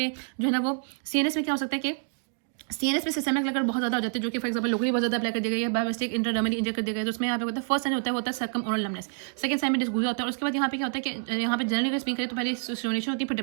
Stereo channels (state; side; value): silent; left; 56 dB below the other